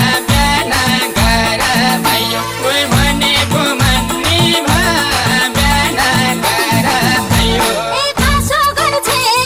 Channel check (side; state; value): both; identical; correlation 1.00